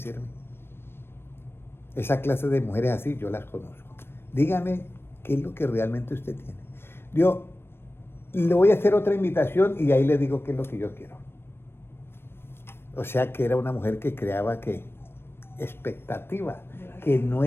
Esa clase de mujeres así yo las conozco. Dígame qué es lo que realmente usted tiene. Yo le voy a hacer otra invitación y ahí le digo qué es lo que yo quiero. O sea que era una mujer que creaba ¿qué? Expectativa, que no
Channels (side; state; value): right; late; 0.11 ms